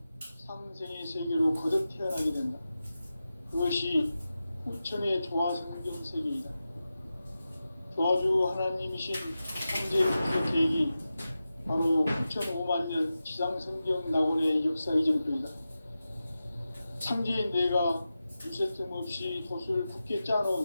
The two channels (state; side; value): inverted; both; correlation -0.93